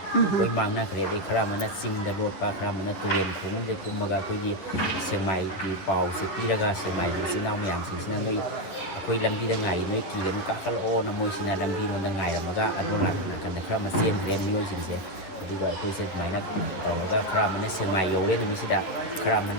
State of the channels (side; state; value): right; late; 11 ms